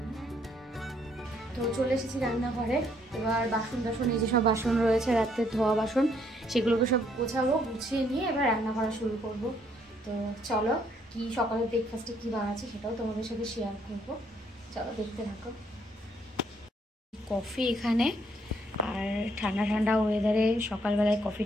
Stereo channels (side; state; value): both; normal; correlation 0.69